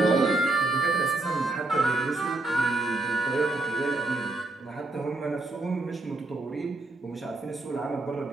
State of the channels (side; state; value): left; quieter; 3.0 dB